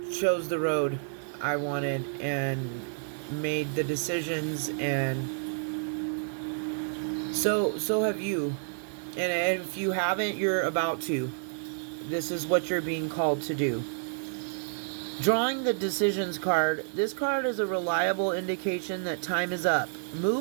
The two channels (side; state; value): left; silent; digital silence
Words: chose the road I wanted and made the decisions, and so have you. And if you haven't, you're about to. This is what you're being called to do. Drawing the decisions card. This card is a reliable indication that time is up.